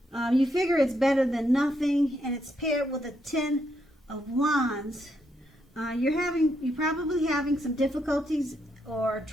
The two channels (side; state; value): both; normal; correlation 0.78